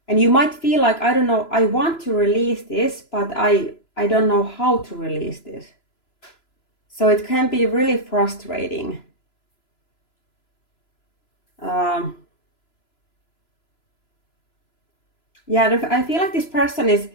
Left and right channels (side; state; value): right; late; 3.0 ms